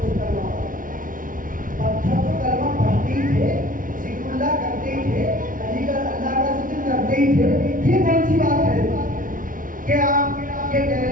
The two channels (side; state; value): left; late; 0.39 ms